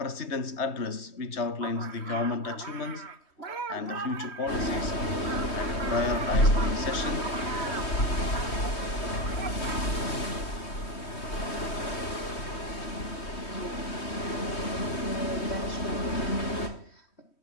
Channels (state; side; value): late; right; 3.1 ms